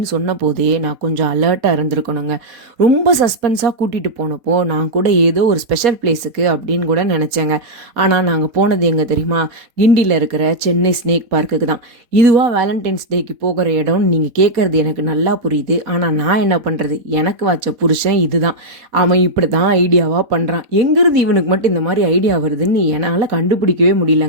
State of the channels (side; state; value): left; late; 4.2 ms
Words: சொன்ன போதே நான் கொஞ்சம் அலர்ட்டாக இருந்திருக்கணுங்க. ரொம்ப சஸ்பென்ஸாக கூட்டிகிட்டு போனப்போ நான் கூட ஏதோ ஒரு ஸ்பெஷல் பிளேஸுக்கு அப்படின்னு கூட நினச்சேங்க. ஆனால் நாங்கள் போனது எங்கே தெரியுமா? கிண்டியில் இருக்கிற சென்னை ஸ்னேக் பார்க்குக்கு தான். இதுவாக வேலண்டைன்ஸ் டேக்கு போகிற இடம்னு நீங்கள் கேட்குறது எனக்கு நல்லா புரியுது. ஆனால் நான் என்ன பண்ணுறது? எனக்கு வச்ச புருஷன் இதுதான். அவன் இப்படி தான் ஐடியாவாக பண்ணுறான். எங்கிருந்து இவனுக்கு மட்டும் இந்த மாதிரி ஐடியா வருதுன்னு என்னால் கண்டுபிடிக்கவே